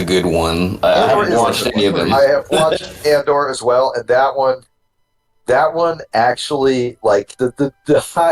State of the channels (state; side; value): identical; both; correlation 1.00